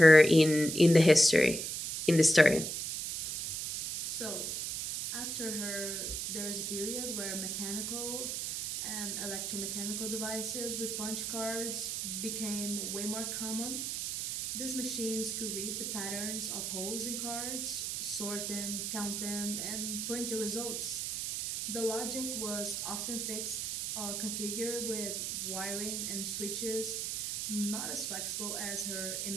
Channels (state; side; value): noise; right; hiss, 3 dB below the sound